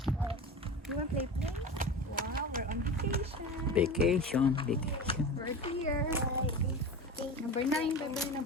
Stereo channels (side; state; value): both; normal; correlation 0.30